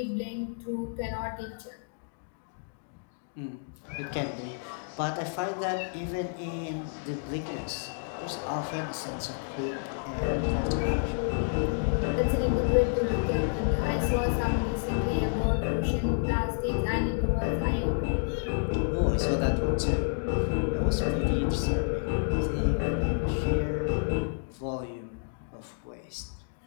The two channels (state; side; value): silent; right; digital silence